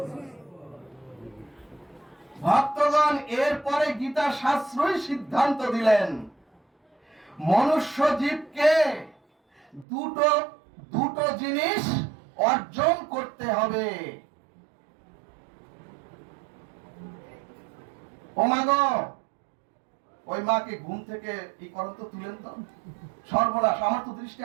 ভক্তগণ এরপরে গীতা শাস্ত্রই সিদ্ধান্ত দিলেন, মনুষ্য জীবকে দুটো জিনিস অর্জন করতে হবে। ও মা গো, ওই মাকে ঘুম থেকে এই করেন তো, তুলেন তো। সর্বনাশ, আমার তো দৃষ্টি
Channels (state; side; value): drops out; left; at 9.9 s